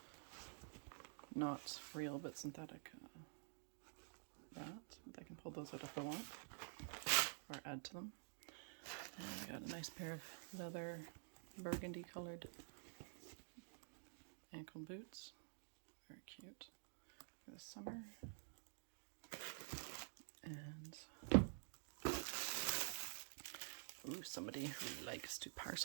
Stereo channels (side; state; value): left; silent; digital silence